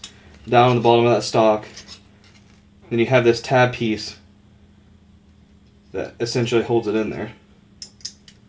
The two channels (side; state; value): both; identical; correlation 1.00